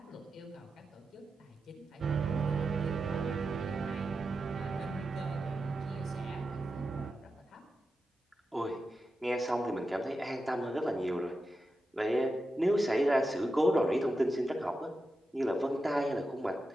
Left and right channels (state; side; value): normal; both; correlation 0.90